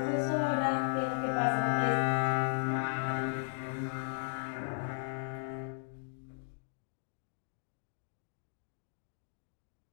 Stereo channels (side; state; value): right; silent; digital silence